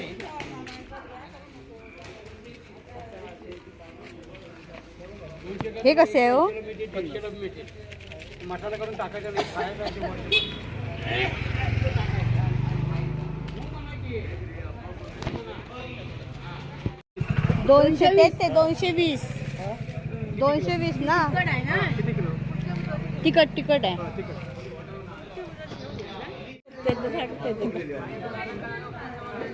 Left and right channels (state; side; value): identical; both; correlation 1.00